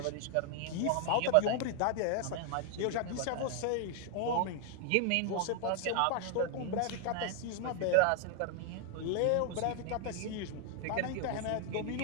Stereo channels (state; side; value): different; both; correlation 0.00